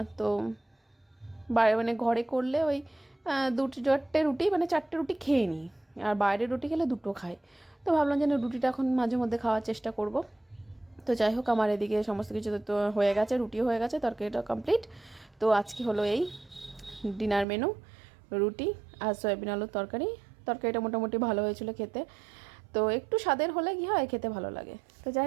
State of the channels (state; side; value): drops out; left; at 17.4 s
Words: তো মানে ঘরে করলে ওই 2-4টে রুটি, মানে 4টে রুটি খেয়ে নিই, আর বাইরের রুটি খেলে 2টো খাই। তো ভাবলাম যে না, রুটিটা এখন মাঝে মধ্যে খাওয়ার চেষ্টা করব। তো যাই হোক, আমার এদিকে সমস্ত কিছু তো হয়ে গেছে, রুটিও হয়ে গেছে, তরকারিটা কমপ্লিট। তো আজকে হলো এই ডিনার মেনু, রুটি আর সয়াবিন আলুর তরকারি। তরকারিটা মোটামুটি ভালো হয়েছিল খেতে, তো একটু স্বাদের হলে কী হয়, খেতে ভালো লাগে। তো যাই